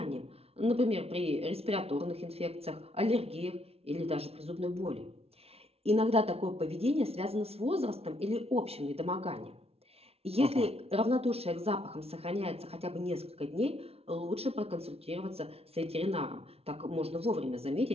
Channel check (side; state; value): left; late; 0.29 ms